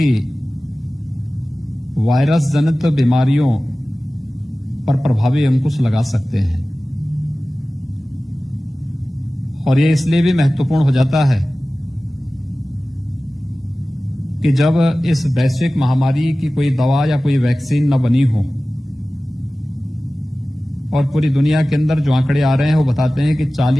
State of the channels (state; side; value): normal; both; correlation 0.97